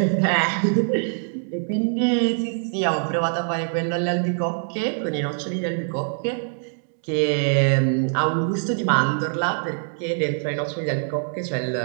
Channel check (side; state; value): left; silent; 63 dB below the other